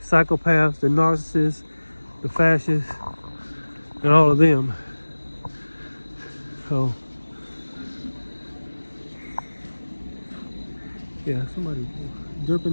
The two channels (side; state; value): both; inverted; correlation -1.00